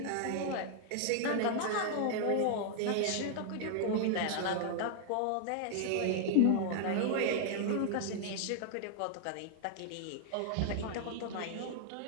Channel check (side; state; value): both; different; correlation -0.01